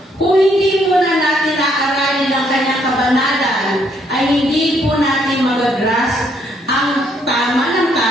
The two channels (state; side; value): normal; both; correlation 0.70